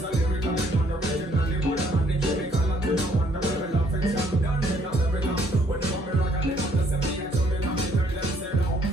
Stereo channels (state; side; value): normal; both; correlation 0.65